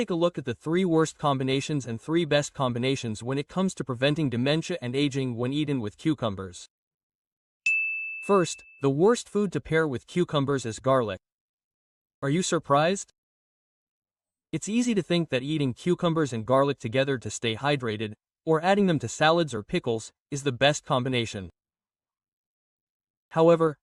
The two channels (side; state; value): both; identical; correlation 1.00